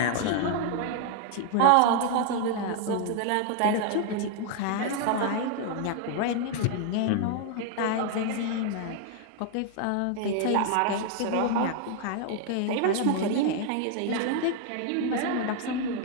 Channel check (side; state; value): both; different; correlation 0.00